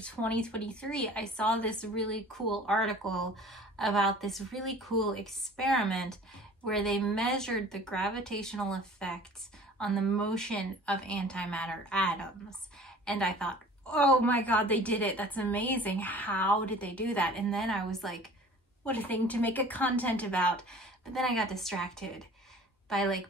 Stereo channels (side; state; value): both; normal; correlation 0.46